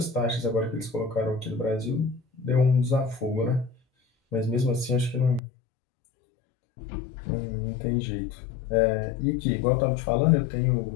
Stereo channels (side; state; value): right; drops out; at 5.4 s